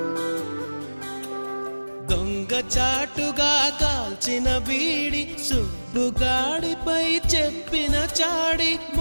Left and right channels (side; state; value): both; inverted; correlation -1.00